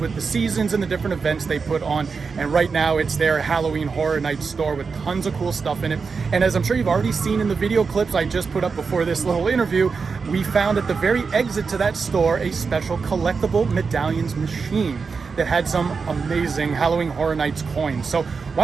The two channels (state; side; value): quieter; left; 5.1 dB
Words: with the seasons and the different events they put on. And right now it's their Halloween Horror Night store with tons of cool stuff in it. And as I'm sure you've already seen in the video clips I just put up before this little interview, we found at the very exit to that store a special Collectible Medallions machine that had some amazing Halloween Horror Nights coins. So why